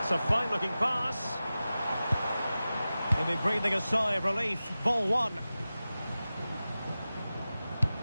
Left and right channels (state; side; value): inverted; both; correlation -0.95